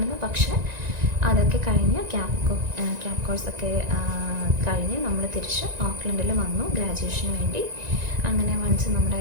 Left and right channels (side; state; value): left; late; 1.9 ms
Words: പക്ഷേ അതൊക്കെ കഴിഞ്ഞ് ക്യാബ് കോഴ്സൊക്കെ കഴിഞ്ഞ് നമ്മൾ തിരിച്ച് ഓക്ലൻഡിൽ വന്നു ഗ്രാജുവേഷന് വേണ്ടി. അങ്ങനെ വൺസ് നമ്മുടെ